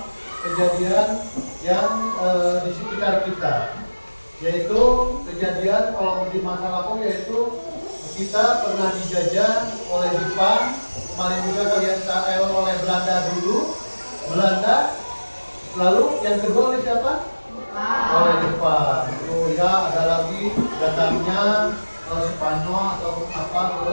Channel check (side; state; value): both; inverted; correlation -1.00